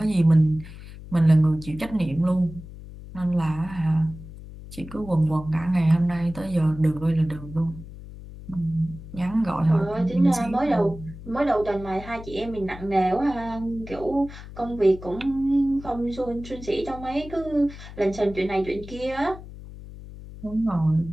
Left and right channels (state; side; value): noise; left; hum, 14 dB below the sound